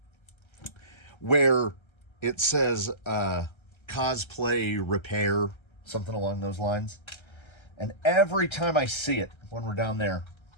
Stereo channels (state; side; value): late; right; 1.3 ms